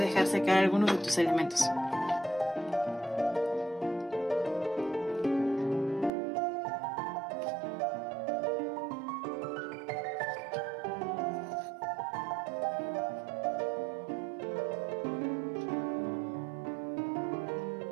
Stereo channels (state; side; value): drops out; left; at 6.1 s